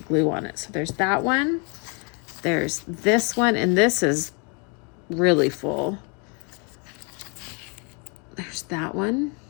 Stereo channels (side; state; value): right; quieter; 34.8 dB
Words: glue on it. So there's that one. There's this one, and this is really full. There's that one,